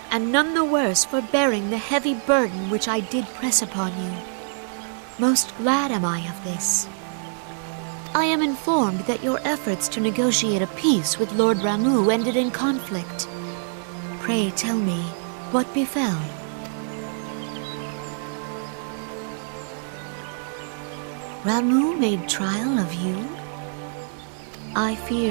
and none the worse for bearing the heavy burden which I did press upon you. Most glad am I of this. I am informed that your efforts to negotiate a peace with Lord Ramuh ended in conflict. Pray tell me, what befell? Ramuh made trial of you? I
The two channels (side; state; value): left; silent; digital silence